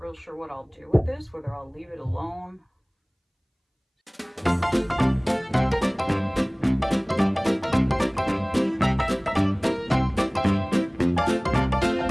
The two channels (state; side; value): identical; both; correlation 1.00